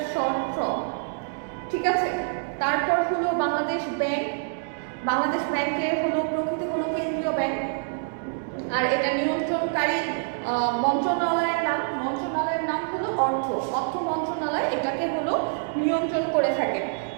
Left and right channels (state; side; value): silent; left; digital silence